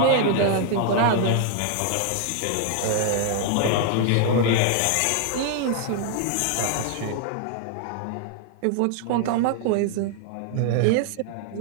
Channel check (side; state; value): both; different; correlation 0.00